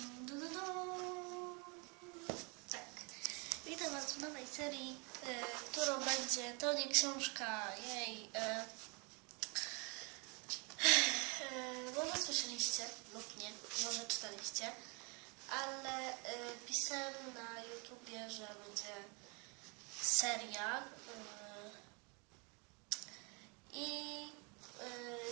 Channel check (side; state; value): left; quieter; 32.3 dB